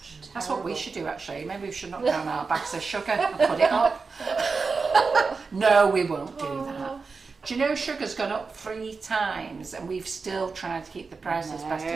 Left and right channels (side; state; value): left; quieter; 4.6 dB